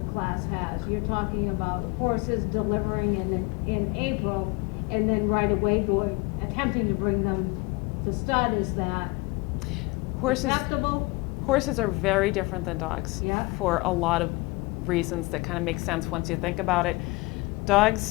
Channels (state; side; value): quieter; right; 24.4 dB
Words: class has. You're talking about horses delivering in April, and then right away attempting to bring them to stud. Is that acceptable? Horses are very different than dogs, Yeah. for a lot of reasons that kind of make sense once you think about it.